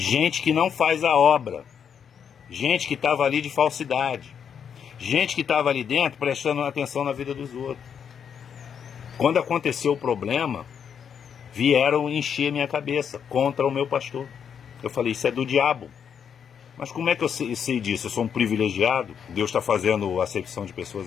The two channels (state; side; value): quieter; right; 7.6 dB